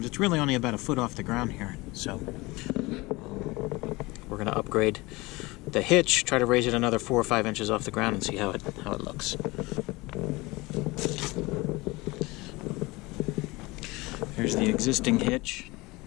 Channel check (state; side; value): quieter; right; 22.5 dB